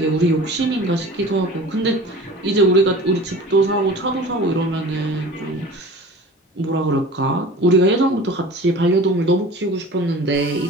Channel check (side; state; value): both; normal; correlation 0.40